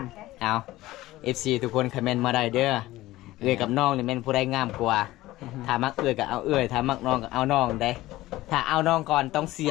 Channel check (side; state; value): right; quieter; 17.1 dB